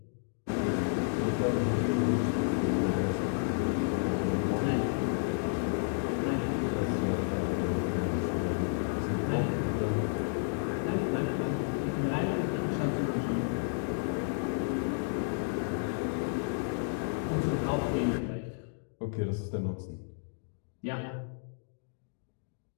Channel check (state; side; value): silent; right; digital silence